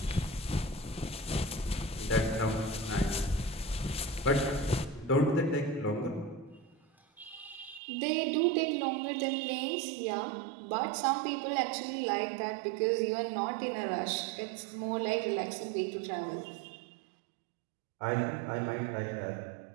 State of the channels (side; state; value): left; drops out; at 7.8 s